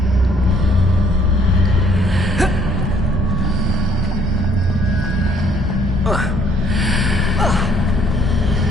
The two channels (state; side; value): normal; both; correlation 0.64